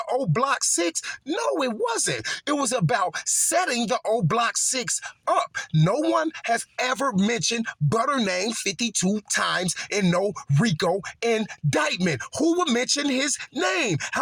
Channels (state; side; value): identical; both; correlation 1.00